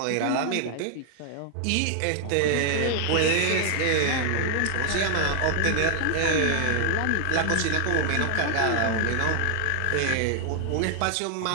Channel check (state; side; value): different; both; correlation 0.00